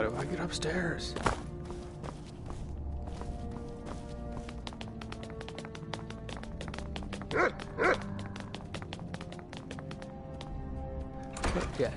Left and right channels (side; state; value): both; identical; correlation 1.00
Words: do I get upstairs? Yeah,